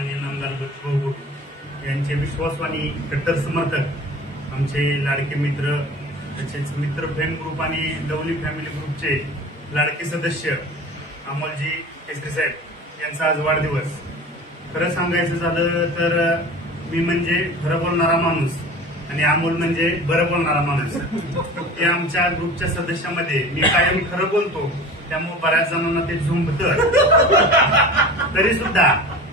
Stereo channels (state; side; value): normal; both; correlation 0.38